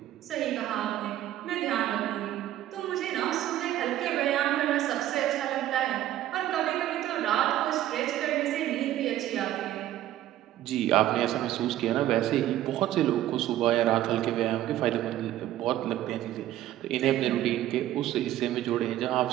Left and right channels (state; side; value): quieter; left; 13.3 dB